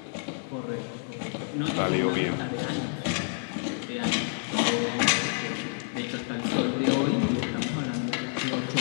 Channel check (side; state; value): right; silent; digital silence